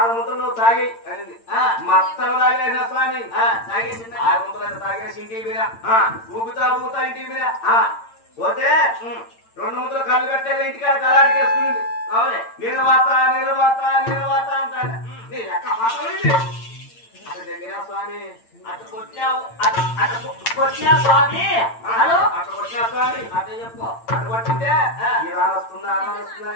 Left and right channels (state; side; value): late; right; 8.8 ms